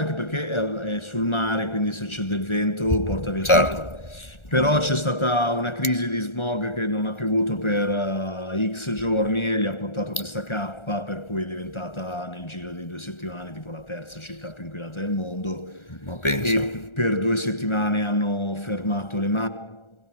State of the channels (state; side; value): late; right; 1.4 ms